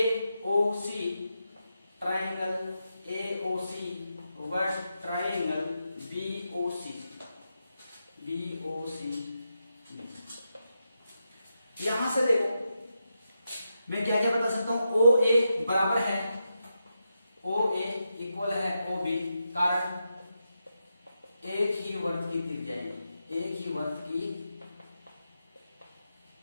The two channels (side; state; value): both; inverted; correlation -0.86